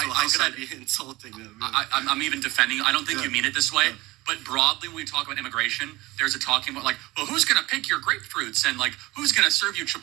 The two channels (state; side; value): quieter; left; 20.1 dB